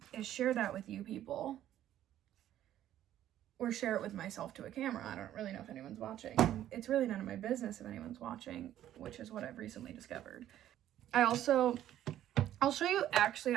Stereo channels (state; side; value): quieter; left; 12.1 dB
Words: is share that with you people, or share it with myself to a camera. I don't really know if anyone's watching. It's really none of my business if anyone's watching, which is what I've recently discovered. I'll show you, actually,